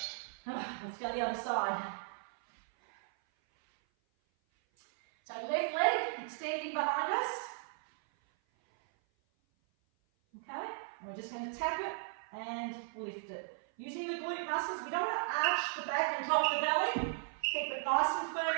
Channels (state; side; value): silent; left; 54 dB below the other